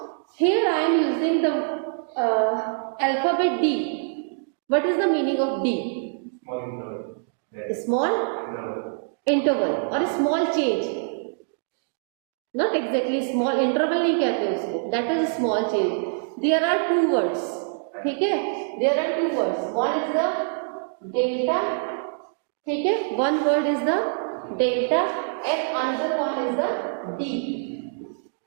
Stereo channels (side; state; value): left; silent; digital silence